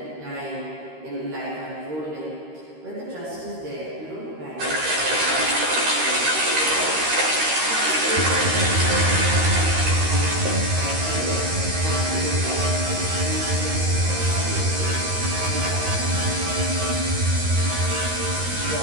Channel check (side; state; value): left; late; 13 ms